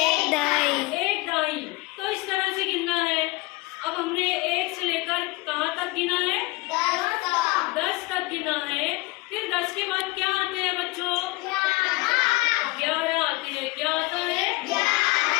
डाई। तो इस तरह से गिनना है। अब हमने 1 से लेकर कहाँ तक गिना है? 10 तक गिना है। फिर 10 के बाद क्या आते हैं बच्चों? 11 आते हैं। क्या आता है?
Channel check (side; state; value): right; quieter; 22.3 dB